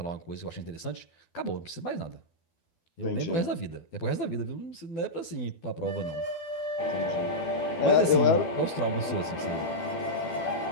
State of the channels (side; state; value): right; late; 12 ms